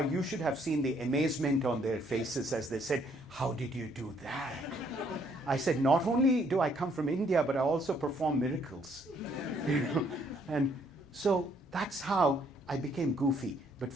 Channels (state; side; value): normal; both; correlation 0.67